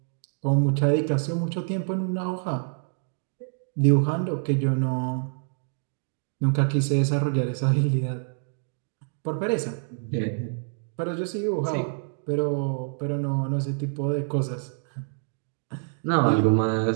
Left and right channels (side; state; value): left; silent; 60 dB below the other